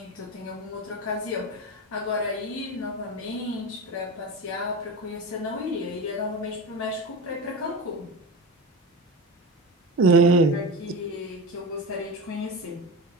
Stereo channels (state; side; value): normal; both; correlation 0.24